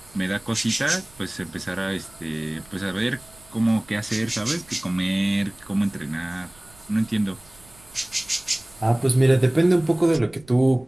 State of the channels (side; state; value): right; noise; rumble, 26 dB below the sound